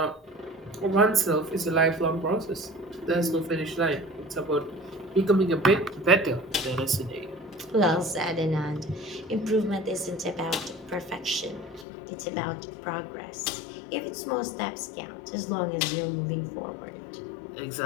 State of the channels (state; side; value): drops out; right; at 11.9 s